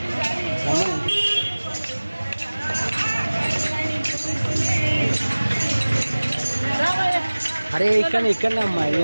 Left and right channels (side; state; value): both; inverted; correlation -1.00